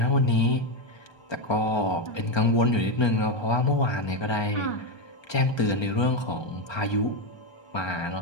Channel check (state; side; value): late; right; 1.3 ms